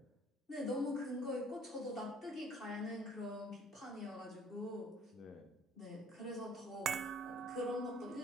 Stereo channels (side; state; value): both; normal; correlation 0.56